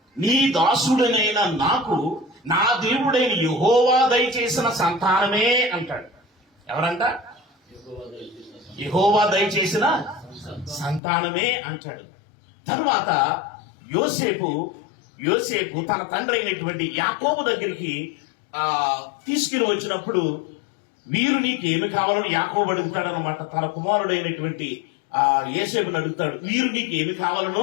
నీ దాసుడనైన నాకు నా దేవుడైన యెహోవా దయచేసిన సంతానమే అంటాడు. ఎవరంట? యెహోవా దయచేసిన సంతానమే అంటాడు. తరువాత యోసేపు తన తండ్రి అయినటువంటి యాకోబు దగ్గరికి తీసుకుని వచ్చినప్పుడు, వీరు నీకు ఏమి కావాలని యాకోబు అడుగుతాడు అనమాట. తన కుమారుడైనటువంటి యోసేపుని అడుగుతాడు, వీరు నీకు ఏమి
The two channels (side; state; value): right; drops out; at 11.0 s